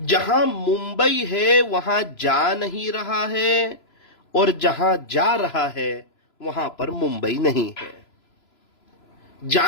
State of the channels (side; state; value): right; late; 3.0 ms